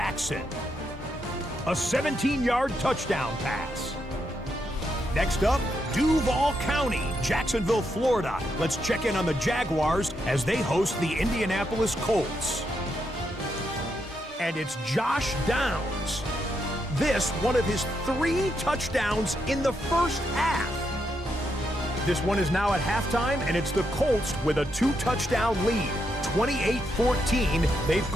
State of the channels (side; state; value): both; normal; correlation 0.81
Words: A 17-yard touchdown pass. Next up, Duval County, Jacksonville, Florida. Let's check in on the Jaguars as they host the Indianapolis Colts. And it's Josh Downs. This, one of his 3 touchdowns in the first half. This one is now at halftime, and it's the Colts with a 2-touchdown lead. 28-14, they've